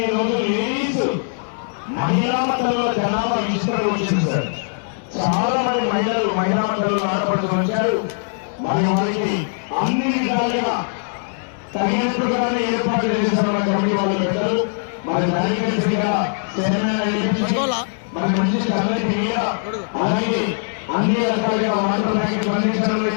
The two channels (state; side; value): silent; right; 65 dB below the other